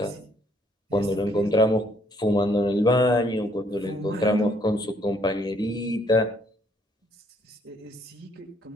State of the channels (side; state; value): both; normal; correlation 0.67